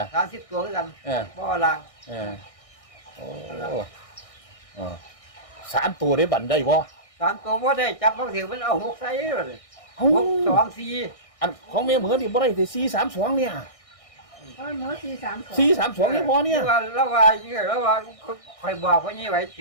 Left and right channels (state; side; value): late; right; 1.6 ms